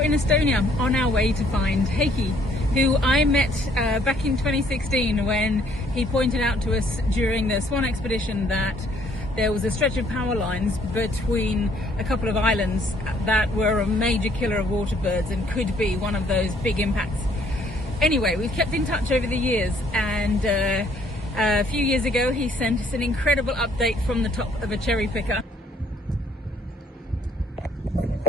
in Estonia on our way to find Heiki, who I met back in 2016 when he pointed out to us during the Swan expedition that there was a stretch of power lines between a couple of islands that were a major killer of water birds and could be one of those big impacts. Anyway, we've kept in touch over the years, and a few years ago he sent us an incredible update from the top of a cherry picker.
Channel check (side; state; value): both; normal; correlation 0.64